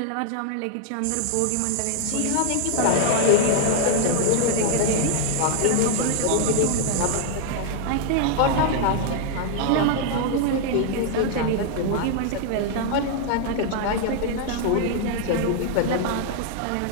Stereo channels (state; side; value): different; both; correlation 0.00